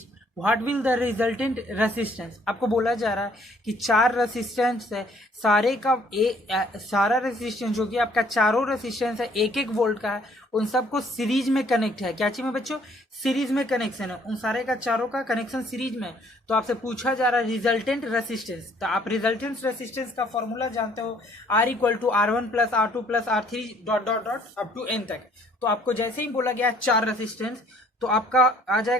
what will the resultant resistance. आपको बोला जा रहा है कि चार रेसिस्टेंस है, सारे का सारा रेसिस्टेंस जो कि आपका चारों रेसिस्टेंस है एक एक वोल्ट का है, उन सबको सीरीज में कनेक्ट है। क्या चीज में बच्चों? सीरीज में कनेक्शन है, उन सारे का चारों का कनेक्शन सीरीज में। तो आपसे पूछा जा रहा है रिजल्टेंट रेसिस्टेंस। तो आप रिजल्टेंट रेसिस्टेंस का फॉर्मूला जानते हो, R equal to R1 plus R2 plus R3 dot dot dot up to n तक। तो आपको जैसे ही बोला गया चार रेसिस्टेंस, तो आपका आ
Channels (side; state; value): both; normal; correlation 0.61